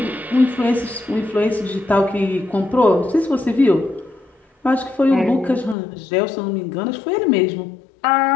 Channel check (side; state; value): right; drops out; at 5.8 s